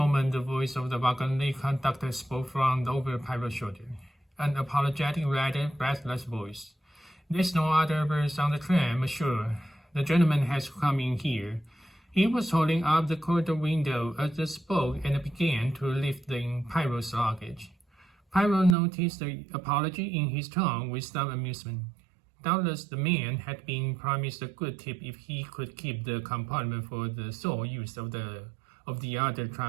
the voice of the wagon conductor spoke from over Pyro's shoulder. An apologetic, rather breathless voice. There's no other berth on the train, monsieur. The gentleman has come in here. He was holding up the corridor window as they spoke and began to lift in Pyro's luggage. Pyro noticed the apology in his tone with some amusement. Doubtless the man had been promised a good tip if he could keep the compartment for the sole use of the other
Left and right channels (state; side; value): drops out; left; at 18.8 s